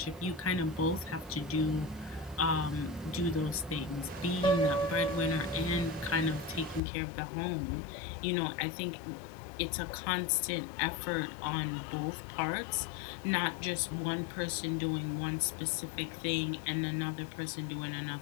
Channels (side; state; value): right; drops out; at 6.8 s